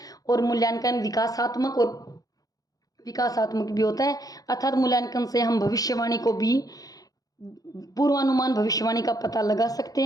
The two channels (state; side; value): late; right; 0.18 ms